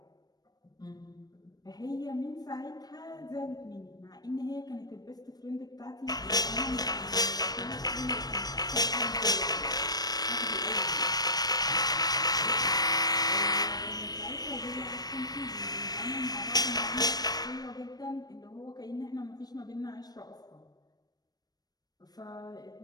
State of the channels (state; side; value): late; right; 0.19 ms